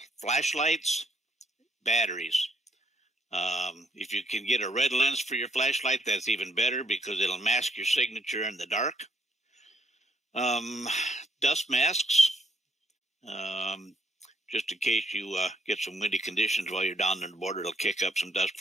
flashlights, batteries. If you can get a red lens for your flashlight, that's even better because it'll mask your signature in the dark. Dust masks, just in case you get some windy conditions while you're down on the border, it'll kick up some dust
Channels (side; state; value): both; normal; correlation 0.71